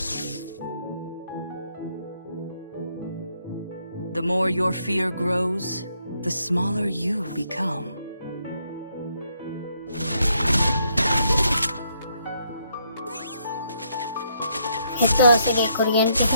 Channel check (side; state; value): both; inverted; correlation -0.73